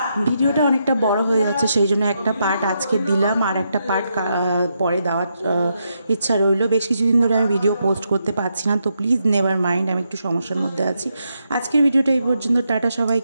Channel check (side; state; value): both; inverted; correlation -0.82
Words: ভিডিওটা অনেকটা বড় হয়ে যাচ্ছে, সেই জন্য একটা পার্ট আজকে দিলাম, আর একটা পার্ট পরে দেওয়ার ইচ্ছা রইল। বেশ কিছুদিন ধরে আমি ভিডিও পোস্ট করতে পারছি না, তো প্লিজ নেভার মাইন্ড, আমি একটু সমস্যার মধ্যে আছি। আজকের ভিডিওটা এই পর্যন্ত, টাটা